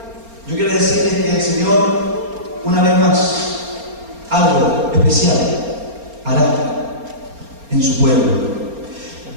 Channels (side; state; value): left; late; 4.3 ms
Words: yo quiero decirles que el Señor, una vez más, algo especial hará en su pueblo.